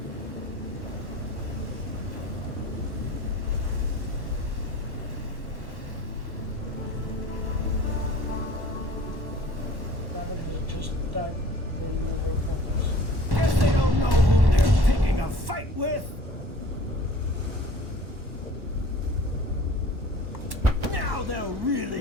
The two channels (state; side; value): late; left; 1.1 ms